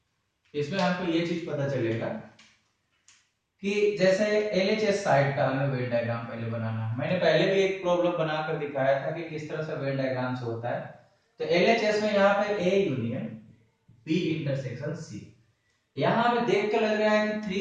इसमें आपको ये चीज पता चलेगा कि जैसे एलएचएस साइड का हमें वेन डायग्राम पहले बनाना है। मैंने पहले भी एक प्रॉब्लम बनाकर दिखाया था कि किस तरह से वेन डायग्राम से होता है। तो एलएचएस में यहाँ पे A union B intersection C, यहाँ हमें देख के लग रहा है कि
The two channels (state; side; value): identical; both; correlation 1.00